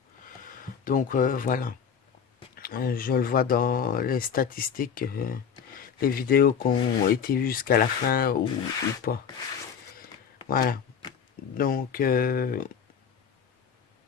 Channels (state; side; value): quieter; right; 7.2 dB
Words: Donc voilà. Je le vois dans les statistiques. les vidéos qui ont été vues jusqu'à la fin ou pas. Voilà. Donc, je